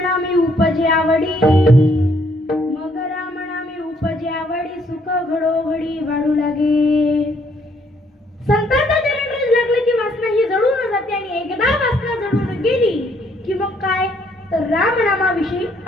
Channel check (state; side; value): normal; both; correlation 0.67